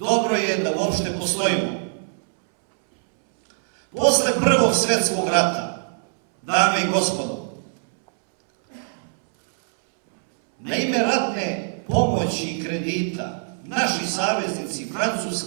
je da uopšte postojimo. Posle Prvog svjetskog rata, dame i gospodo, na ime ratne pomoći i kredita, naši saveznici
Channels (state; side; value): silent; left; 64 dB below the other